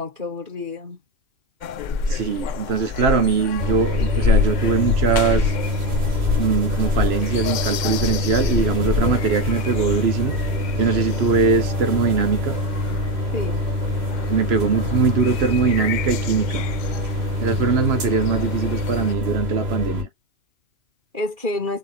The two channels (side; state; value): left; late; 2.1 ms